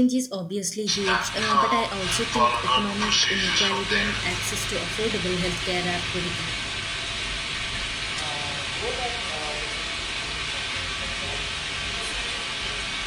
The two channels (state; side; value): identical; both; correlation 1.00